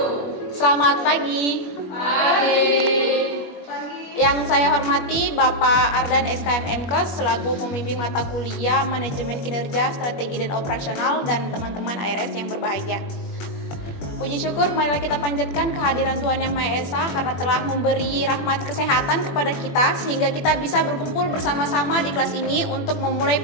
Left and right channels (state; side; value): late; right; 21 ms